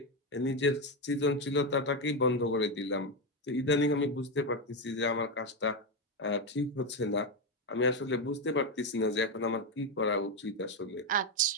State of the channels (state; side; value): normal; both; correlation 0.09